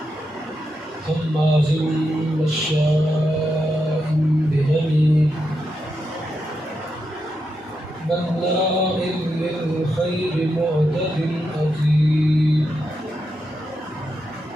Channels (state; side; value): normal; both; correlation 0.85